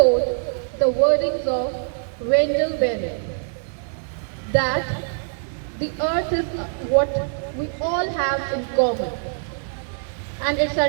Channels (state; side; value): silent; left; 63 dB below the other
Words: the wordings of Wendell Berry, that the earth is what we all have in common, and it's